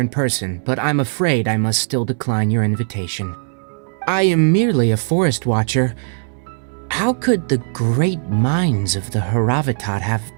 person, but I'm afraid I must still decline your invitation. I am merely a forest watcher. How could the great minds of the Haravatat have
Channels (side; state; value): left; silent; 63 dB below the other